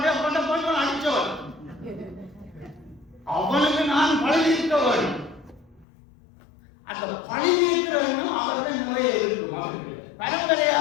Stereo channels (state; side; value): drops out; right; at 5.9 s